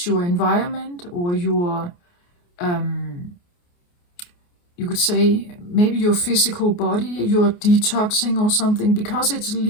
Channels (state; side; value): late; right; 28 ms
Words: environment, or your, you could say, maybe your physical body, you're detoxing or something, because it's